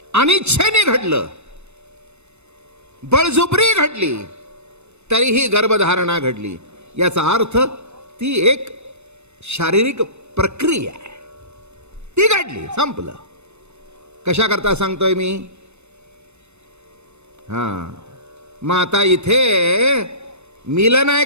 अनिच्छेने घडलं, बळजुबरी घडली, तरीही गर्भधारणा घडली. याचा अर्थ ती एक शारीरिक प्रक्रिया आहे, ती घडली, संपलं. कशा करता सांगतोय मी? मग आता इथे मिलन आहे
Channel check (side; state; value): left; late; 0.81 ms